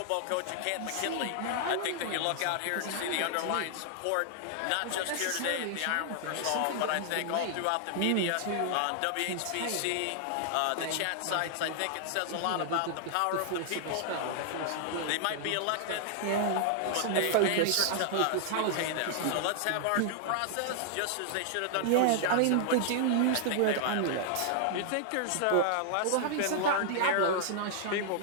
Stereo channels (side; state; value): both; different; correlation -0.01